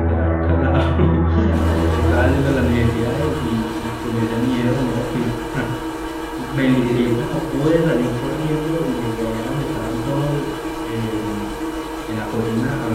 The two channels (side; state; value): both; identical; correlation 1.00